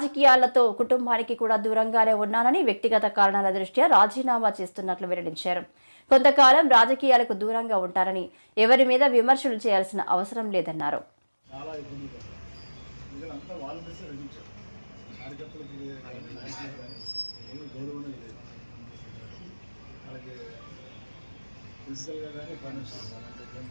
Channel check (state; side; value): inverted; both; correlation -1.00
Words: కుటుంబానికి కూడా దూరంగానే ఉన్నానని, వ్యక్తిగత కారణాల దృష్ట్యా రాజీనామా చేస్తున్నట్లు వెల్లడించారు. కొంతకాలం రాజకీయాలకు దూరంగా ఉంటారని, ఎవరి మీద విమర్శలు చేయాల్సిన అవసరం లేదన్నారు. ఫిజికల్గా కానీ ఫైనాన్షియల్